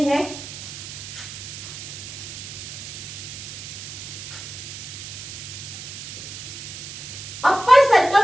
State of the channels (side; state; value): right; noise; hiss, 10 dB below the sound